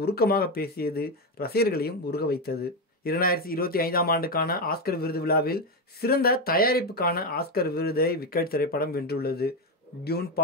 உருக்கமாக பேசியது ரசிகர்களையும் உருக வைத்தது. 2025ஆம் ஆண்டுக்கான ஆஸ்கர் விருது விழாவில் சிறந்த தயாரிப்புக்கான ஆஸ்கர் விருதை விக்கெட் திரைப்படம் வென்றுள்ளது. டியூன்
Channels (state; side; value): normal; both; correlation 0.10